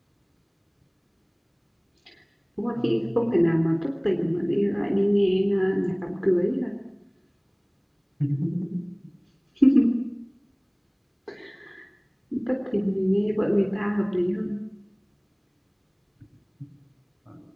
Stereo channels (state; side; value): identical; both; correlation 1.00